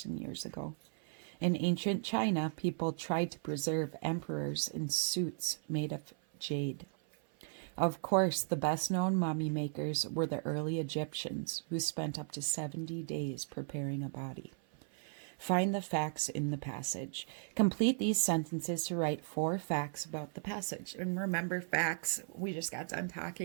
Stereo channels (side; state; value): left; silent; 54 dB below the other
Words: years ago. In ancient China, people tried to preserve emperors in suits made of jade. Of course, the best-known mummy makers were the early Egyptians, who spent up to 70 days preparing a body. Find the facts in the passage. Complete these sentences to write 4 facts about the passage. And remember, facts, we just got done